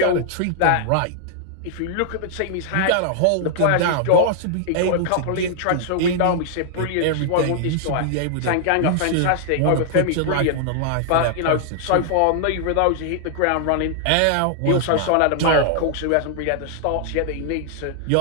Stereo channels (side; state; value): both; different; correlation -0.01